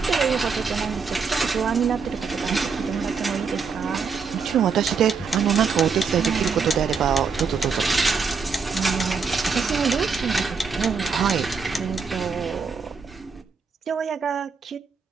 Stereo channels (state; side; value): quieter; left; 5.3 dB